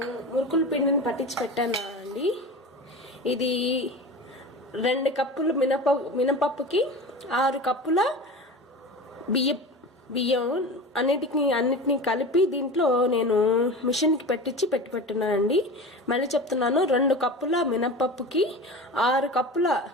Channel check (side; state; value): both; normal; correlation 0.31